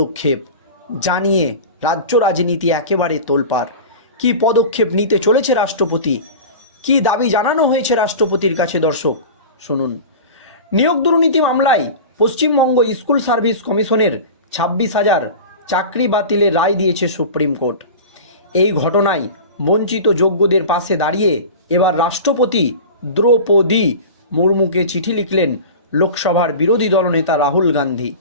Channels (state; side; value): inverted; both; correlation -0.33